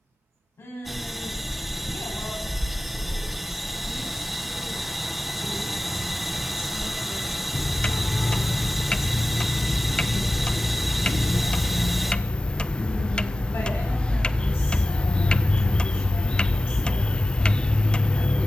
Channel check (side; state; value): both; normal; correlation 0.93